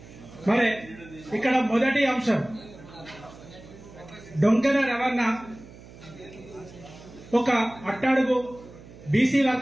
మరి ఇక్కడ మొదటి అంశం, డొంకెన రవణ ఒక అట్టడుగు బీసీ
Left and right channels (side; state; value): right; noise; hum, 19 dB below the sound